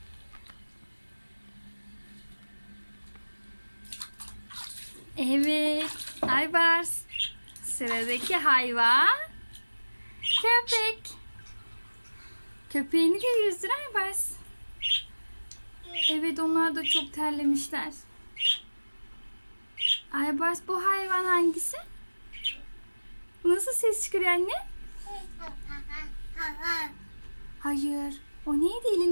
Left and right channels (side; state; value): both; inverted; correlation -1.00